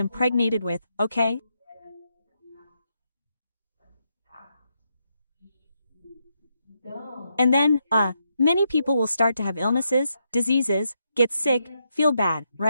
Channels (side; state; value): both; inverted; correlation -0.80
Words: with, okay? And then, many people will start to have illnesses, diseases, get sick, feel bad,